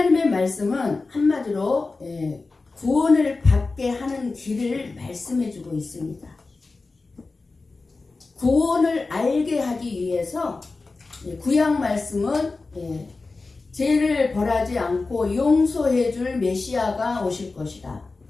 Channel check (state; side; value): quieter; right; 3.8 dB